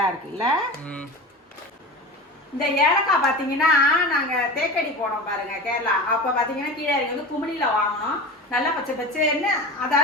இருக்குல்ல. இந்த ஏலக்காய் பார்த்தீங்கன்னா நாங்கள் தேக்கடி போனோம் பாருங்க கேரளா. அப்போ பார்த்தீங்கன்னா கீழே வந்து குமிழியில் வாங்கினோம். நல்லா பச்சை பச்சைன்னு,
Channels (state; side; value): normal; both; correlation 0.30